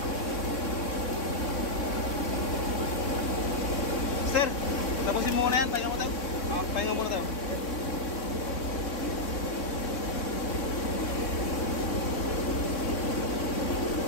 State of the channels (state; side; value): late; right; 3.6 ms